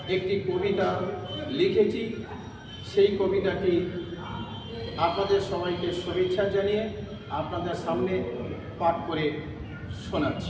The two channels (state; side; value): identical; both; correlation 1.00